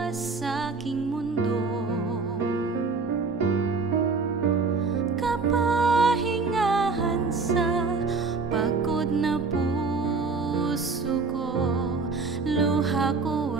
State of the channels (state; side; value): quieter; left; 4.3 dB